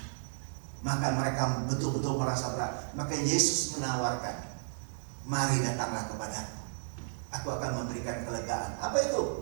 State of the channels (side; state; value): left; silent; digital silence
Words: maka mereka betul-betul merasa berat. Maka Yesus menawarkan, mari datanglah kepadaku, aku akan memberikan kelegaan. Apa